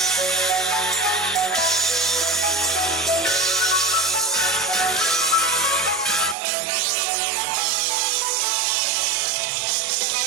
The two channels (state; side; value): drops out; left; at 6.4 s